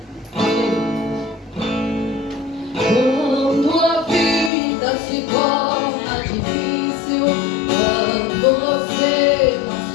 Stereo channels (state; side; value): drops out; right; at 4.5 s